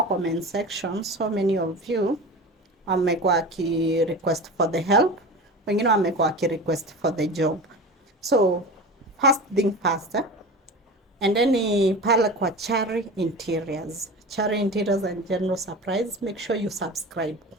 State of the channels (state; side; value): normal; both; correlation 0.32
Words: comment section so many of you wamekuwa ki request for the help, wengine wamekuwa ki request for the job. So first thing first, and then pale kwa Chari Interiors. Chari Interiors and General Surprise, make sure you subscribe.